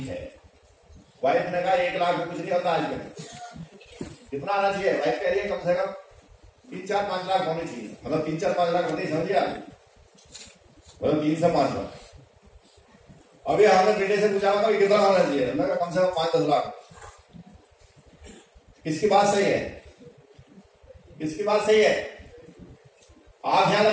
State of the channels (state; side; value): identical; both; correlation 1.00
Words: है, वाइफ ने कहा 1 लाख में कुछ नहीं होता आजकल, कितना आना चाहिए? वाइफ कह रही है कम से कम 3-4-5 लाख होने चाहिए, मतलब 3-4-5 लाख होते ही समझिए आप, मतलब 3 से 5 लाख। अभी हमने बेटे से पूछा कि कितना होना चाहिए, मैं कहा कम से कम 5-10 लाख। किसकी बात सही है? किसकी बात सही है? आप यहां